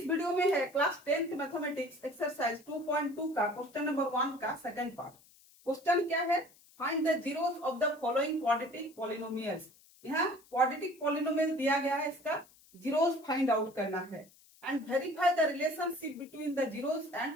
video में है क्लास 10th मैथमेटिक्स एक्सरसाइज 2.2 का क्वेश्चन नंबर 1 का सेकंड पार्ट। क्वेश्चन क्या है? Find the zeros of the following quadratic polynomials. यहाँ क्वाड्रेटिक पॉलिनोमियल दिया गया है, इसका जीरोस फाइंड आउट करना है and verify the relationship between the zeros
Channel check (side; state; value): left; noise; hiss, 27 dB below the sound